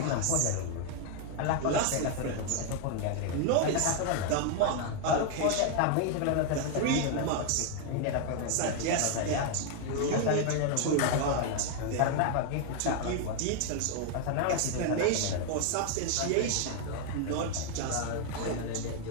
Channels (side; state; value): both; different; correlation 0.01